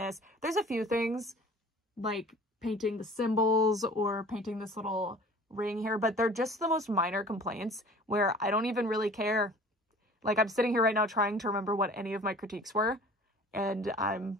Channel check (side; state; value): both; normal; correlation 0.46